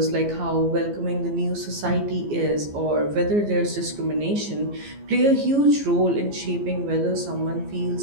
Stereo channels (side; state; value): left; late; 14 ms